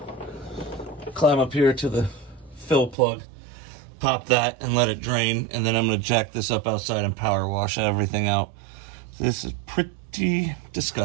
climb up here to the fill plug, pop that and let it drain, and then I'm gonna jack this up outside and power wash everything out. This is pretty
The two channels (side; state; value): left; drops out; at 3.0 s